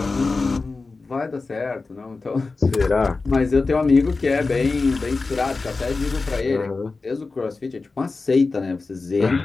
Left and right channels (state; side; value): quieter; right; 3.9 dB